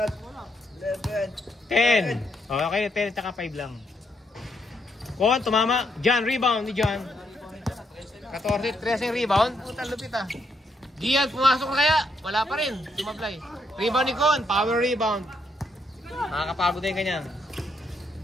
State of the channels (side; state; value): both; normal; correlation 0.76